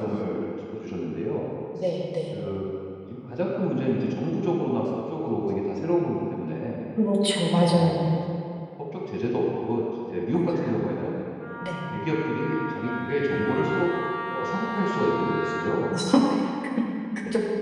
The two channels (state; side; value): identical; both; correlation 1.00